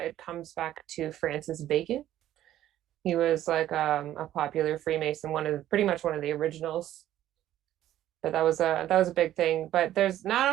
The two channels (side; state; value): left; quieter; 12.7 dB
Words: comes back to Francis Bacon. He was like a popular Freemason, pretty much one of the originals. But that was a big thing. But there's